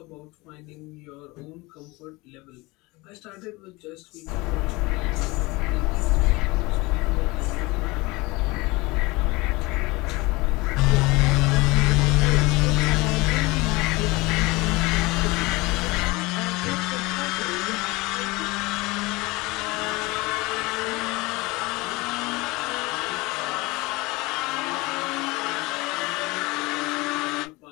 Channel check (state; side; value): quieter; right; 23.3 dB